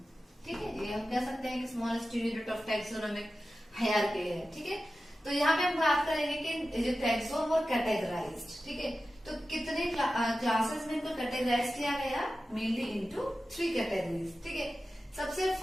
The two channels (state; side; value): normal; both; correlation 0.94